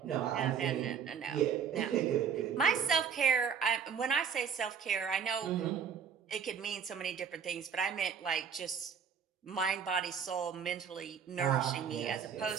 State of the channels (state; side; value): quieter; left; 7.1 dB